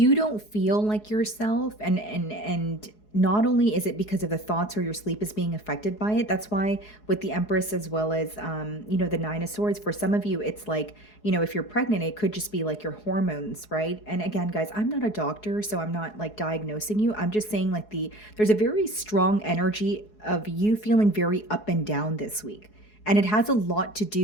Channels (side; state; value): right; late; 4.7 ms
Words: don't feel like yourself, and not only is it because of the thoughts, or your sleep is being affected by it. That's why with the Empress, as well as the Nine of Swords, for some of you it's like, if you're pregnant, it could just be like your hormones, right? And again, guys, I'm not a doctor, so I'm not like diagnosing you. I'm just saying like there's a very strong energy of you feeling very up and down this week, and it has a lot to